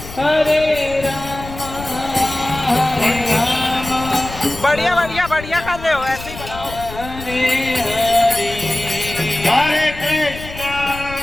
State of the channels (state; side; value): noise; left; rumble, 13 dB below the sound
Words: Hare Rama बढ़िया बढ़िया बढ़िया कर रहे हो, ऐसे ही बनाओ। Hare